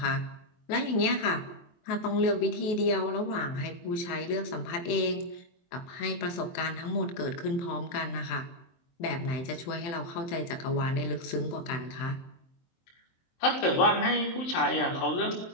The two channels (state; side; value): late; right; 23 ms